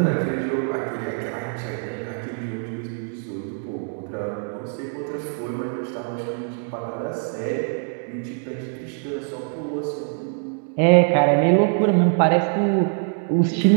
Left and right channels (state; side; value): silent; left; 56 dB below the other